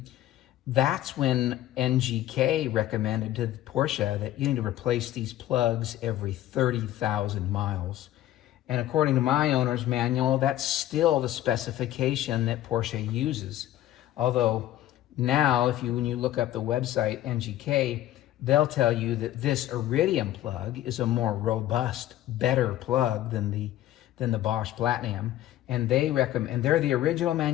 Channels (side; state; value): right; quieter; 13.6 dB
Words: that's when NGK recommended to Porsche that you need to replace these plugs every 30,000 miles. And according to my owner's manual, that's still the specification that Porsche uses. Although now, when you look up the website NGK, they'll tell you that this Iridium plug is a more robust, better plug than the Bosch Platinum. And they recommend, and they're the original